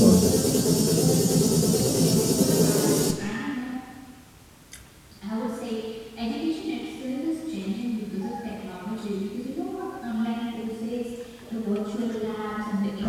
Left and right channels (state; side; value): identical; both; correlation 1.00